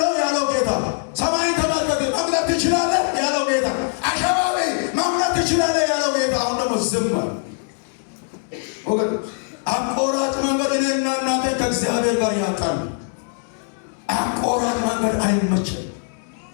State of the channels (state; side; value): silent; right; 57 dB below the other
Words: ያለው ጌታ፣ ሰማይን ተመልከት መምለክ ትችላለህ ያለው ጌታ፣ አሸባቢ መምለክ ትችላለህ ያለው ጌታ አሁን ደግሞ ዝም አለ። ወገን አቆራጭ መንገድ እኔና እናንተ ከእግዚአብሔር ጋር ያጣል። አቆራጭ መንገድ አይመችም።